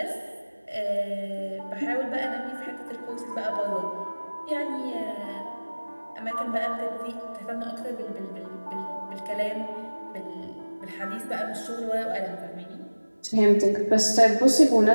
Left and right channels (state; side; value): inverted; both; correlation -1.00